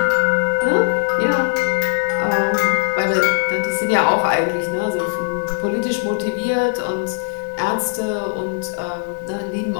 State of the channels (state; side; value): silent; right; digital silence